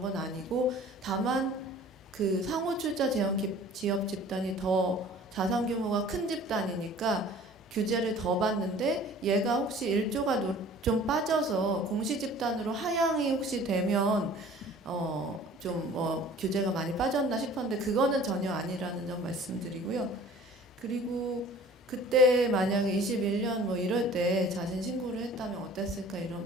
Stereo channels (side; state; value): both; normal; correlation 0.48